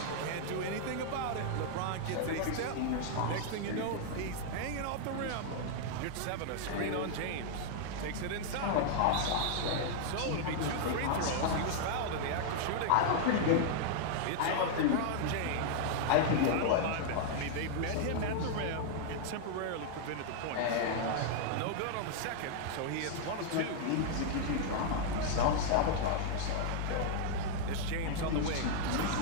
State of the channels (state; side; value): different; both; correlation -0.01